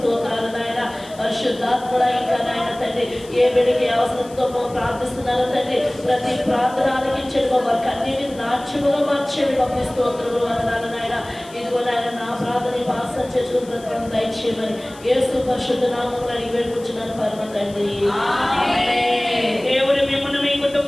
నాయన పరిశుద్ధాత్ముడ ఇంకా నాయన తండ్రి ఏ బిడ్డకి అవసరంతో ప్రార్థిస్తున్నారో తండ్రి ప్రతి ప్రార్థన ఆలకించండి వారికి అన్నిటిని నాట్యముగా మార్చేది పంపి స్తోత్రములు వందనాలు నాయన. ఇదిగో నాయన నా ప్రార్థన భాష చేసిన ప్రకారం దయచేయమని యేసు పరిశుద్ధ నామములో అడిగి వేడుకుంటున్నాను పరమ తండ్రి. దేవుడు మిమ్మల్ని మీ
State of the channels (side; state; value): left; noise; hiss, 22 dB below the sound